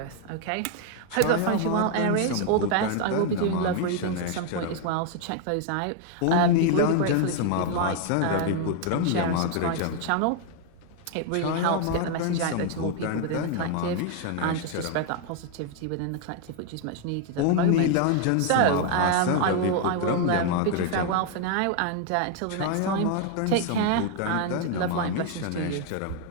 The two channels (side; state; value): both; different; correlation 0.00